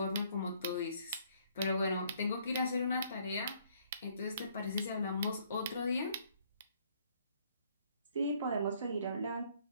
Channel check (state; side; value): inverted; both; correlation -0.64